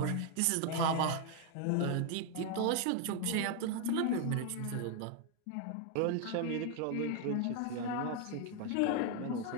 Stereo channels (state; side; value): different; both; correlation 0.01